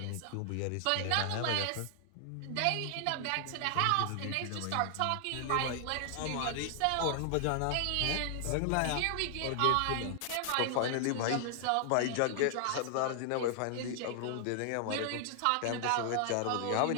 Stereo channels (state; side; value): different; both; correlation 0.00